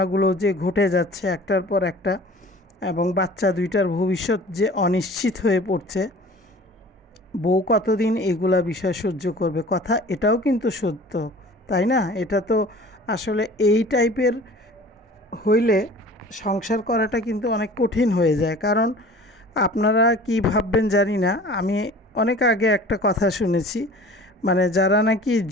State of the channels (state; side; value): normal; both; correlation 0.44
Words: যে ঘটে যাচ্ছে একটার পর একটা, এবং বাচ্চা দুইটার ভবিষ্যৎ যে অনিশ্চিত হয়ে পড়ছে, বউ কতদিন এগুলা বিষয় সহ্য করবে? কথা এটাও কিন্তু সত্য, তাই না? এটা তো আসলে এই টাইপের হইলে সংসার করাটা কিন্তু অনেক কঠিন হয়ে যায়। কারণ আপনারা কি ভাববেন জানি না, আমি অনেক আগে একটা কথা শুনেছি, মানে যারা নাকি